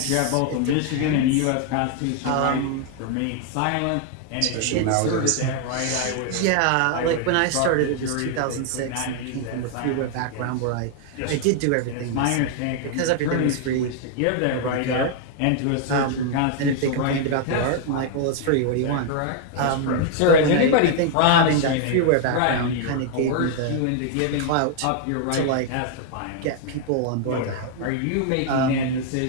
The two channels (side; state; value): both; different; correlation 0.00